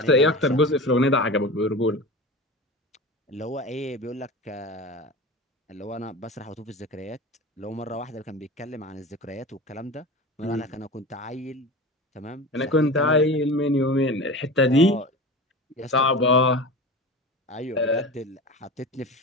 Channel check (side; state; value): both; normal; correlation 0.31